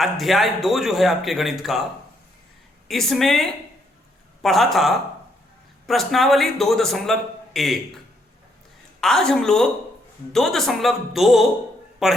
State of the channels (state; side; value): normal; both; correlation 0.73